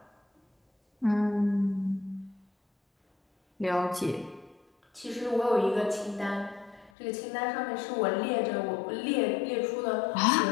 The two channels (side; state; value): right; drops out; at 6.9 s